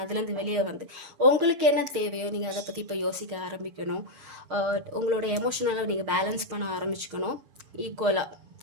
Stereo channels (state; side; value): late; left; 6.5 ms